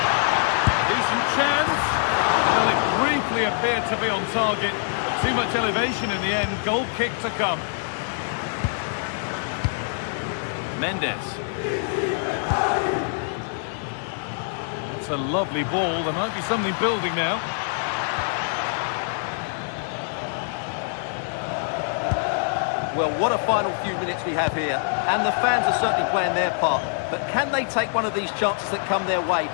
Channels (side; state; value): right; silent; 55 dB below the other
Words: Decent chance. Well, it briefly appeared to be on target, but too much elevation in the end. Goal kick to come. Mendes. That's a lovely ball. There might be something building now. Well, what a final few minutes we have here, and the fans are certainly playing their part, but can they take one of these chances that come their way